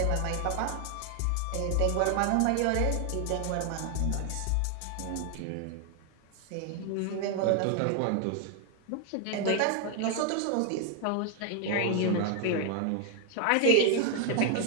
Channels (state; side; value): different; both; correlation 0.00